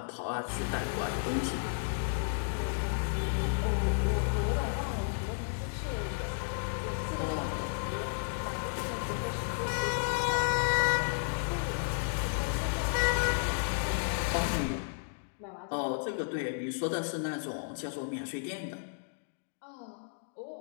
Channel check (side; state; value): right; silent; digital silence